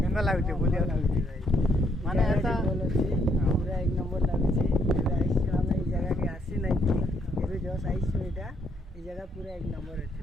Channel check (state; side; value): normal; both; correlation 0.72